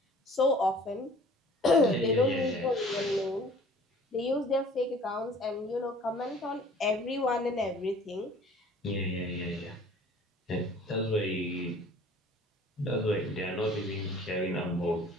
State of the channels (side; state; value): both; normal; correlation 0.50